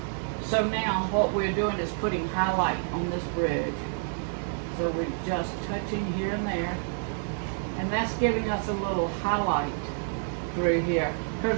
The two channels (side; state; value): left; silent; digital silence